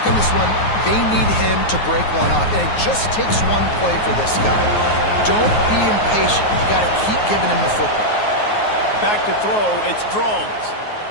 on this one, they need him to break one off, and it just takes one play for this guy. Don't be impatient. You got to keep giving him the football. Back to throw, it's Drones.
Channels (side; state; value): right; late; 9.5 ms